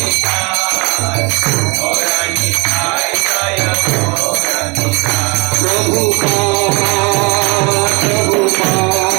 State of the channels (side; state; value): left; quieter; 29.0 dB